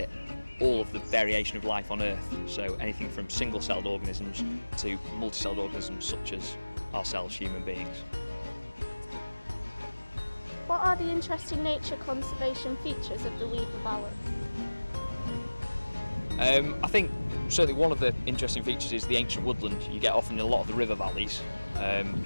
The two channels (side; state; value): both; inverted; correlation -1.00